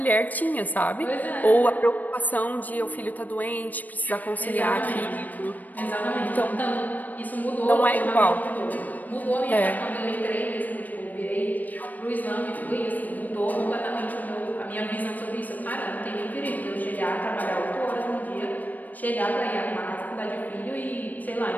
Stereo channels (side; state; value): right; late; 0.082 ms